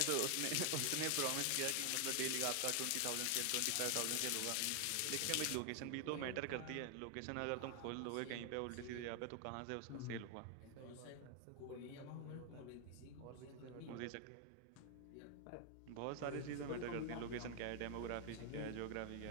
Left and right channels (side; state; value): both; different; correlation 0.00